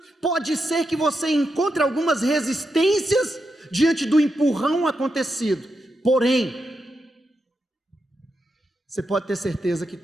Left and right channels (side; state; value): both; normal; correlation 0.85